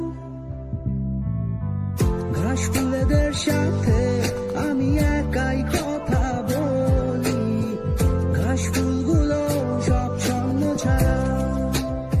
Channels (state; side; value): identical; both; correlation 1.00